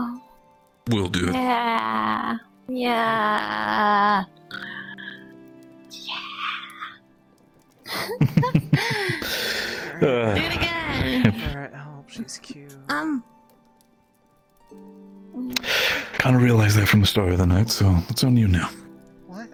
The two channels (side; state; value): both; identical; correlation 1.00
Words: We'll do it. Yeah. Yeah. Do it again. Alright, I hope she's cute. Kind of realized that from the start of the night, so it's on you now.